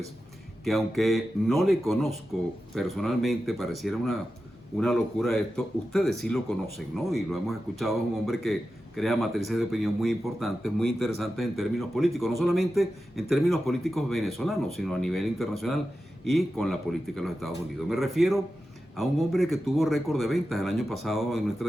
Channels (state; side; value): normal; both; correlation 0.92